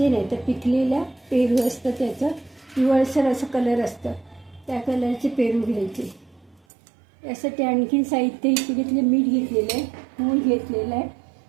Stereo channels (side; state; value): left; drops out; at 6.6 s